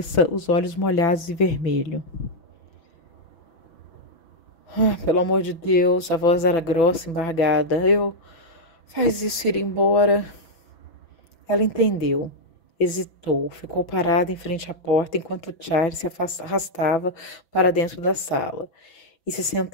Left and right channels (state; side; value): late; right; 6.0 ms